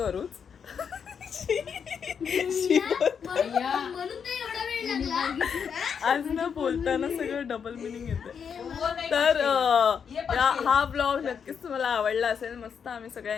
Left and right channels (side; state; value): right; quieter; 7.0 dB